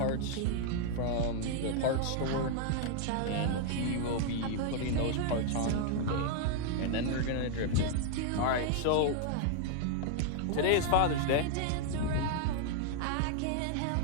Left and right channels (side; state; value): both; different; correlation 0.00